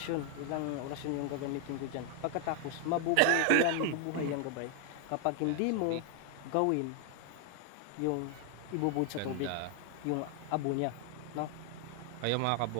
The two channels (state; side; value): different; both; correlation 0.01